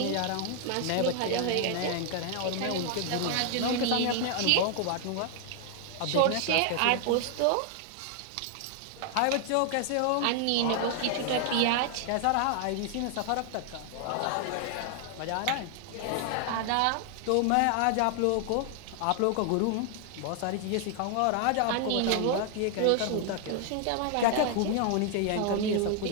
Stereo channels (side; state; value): both; different; correlation 0.00